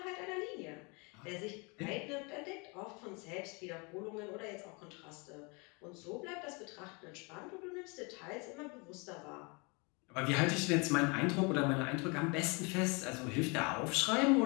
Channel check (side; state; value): right; quieter; 30.2 dB